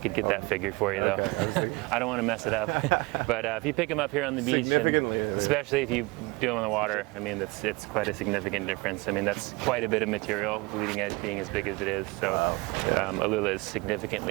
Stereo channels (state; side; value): quieter; left; 25.3 dB